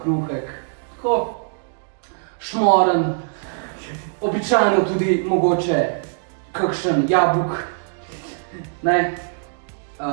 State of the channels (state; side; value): silent; left; digital silence